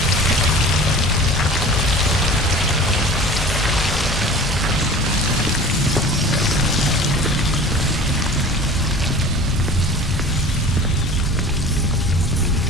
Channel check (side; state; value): both; normal; correlation 0.41